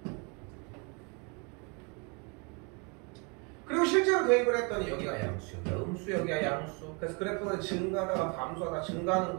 그리고 실제로 대입을 했더니 여기가 양수, 여기가 음수, 여기가 양수. 그래서 그래프는 증가하다가 감소하다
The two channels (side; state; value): left; quieter; 32.7 dB